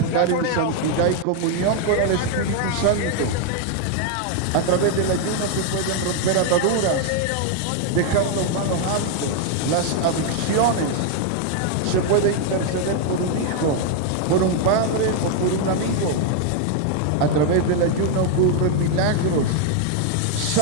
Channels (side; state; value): both; different; correlation 0.00